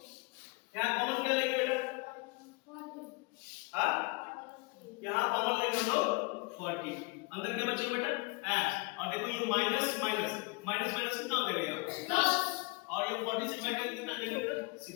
यहां कॉमन क्या लेंगे बेटा? 40. हां यहां कॉमन लेंगे हम लोग 40. अंदर क्या बचेगा बेटा? x. और देखो ये माइनस माइनस माइनस माइनस कितना हो जाएगा? प्लस. और ये 40 से डिवाइड करके कितना आ जाएगा?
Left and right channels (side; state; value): right; quieter; 28.3 dB